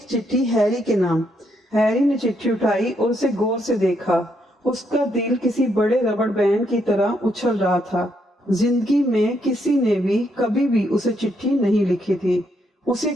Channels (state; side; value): normal; both; correlation 0.75